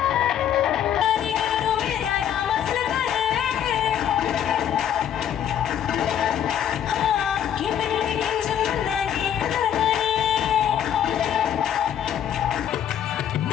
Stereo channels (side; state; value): right; quieter; 9.7 dB